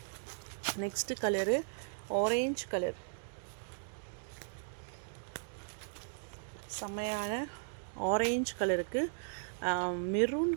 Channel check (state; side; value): silent; left; digital silence